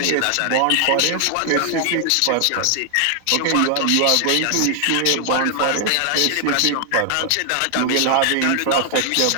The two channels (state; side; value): different; both; correlation 0.00